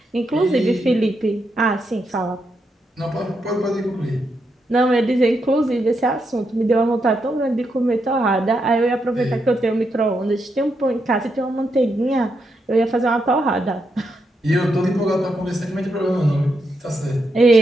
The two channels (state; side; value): normal; both; correlation 0.82